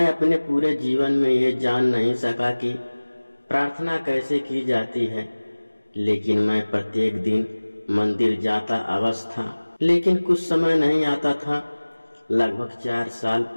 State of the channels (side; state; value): both; inverted; correlation -1.00